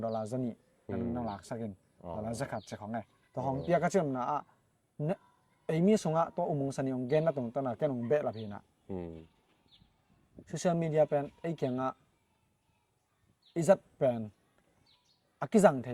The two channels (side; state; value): both; identical; correlation 1.00